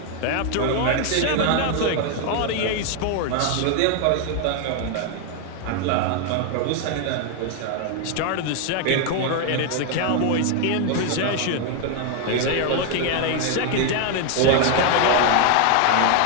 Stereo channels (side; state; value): both; different; correlation 0.01